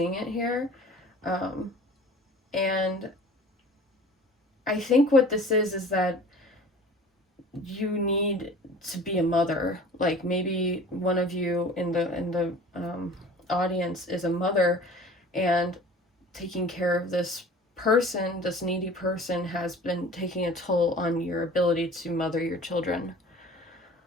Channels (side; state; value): both; normal; correlation 0.44